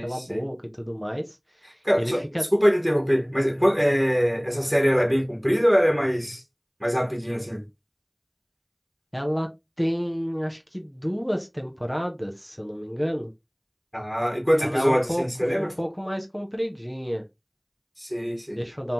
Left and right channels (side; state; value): both; identical; correlation 1.00